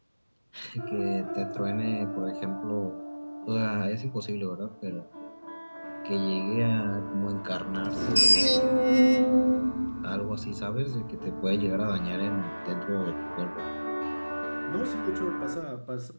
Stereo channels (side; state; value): both; inverted; correlation -1.00